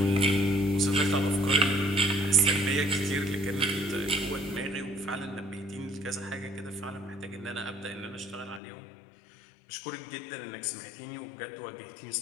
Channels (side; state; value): right; drops out; at 8.6 s